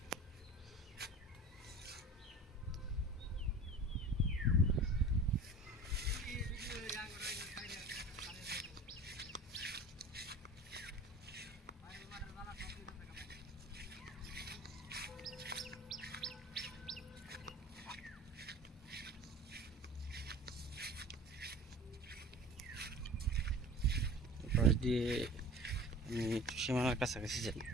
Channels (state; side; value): normal; both; correlation 0.40